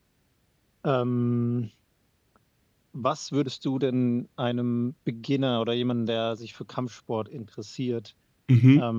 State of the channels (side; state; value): both; identical; correlation 1.00